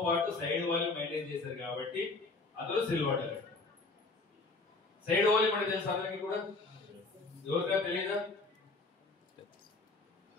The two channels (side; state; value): right; quieter; 3.5 dB